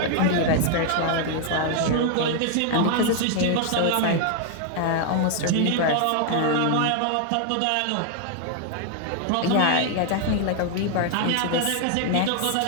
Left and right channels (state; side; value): different; both; correlation 0.00